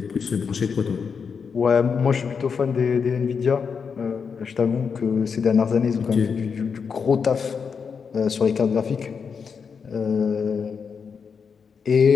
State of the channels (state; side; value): quieter; right; 6.0 dB